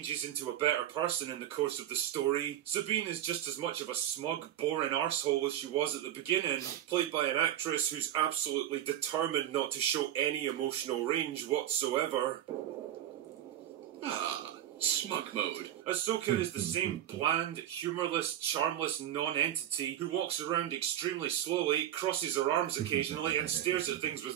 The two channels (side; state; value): left; quieter; 11.7 dB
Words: into a better person in the course of the story. Sabine is just as much of a smug, boring arsehole as she was at the beginning, played by an actress who's absolutely determined not to show any emotional range whatsoever. Smug mode. Ahsoka is the same bland, humourless, charmless non-entity who walks around extremely slowly, crosses her arms occasionally, and stares at things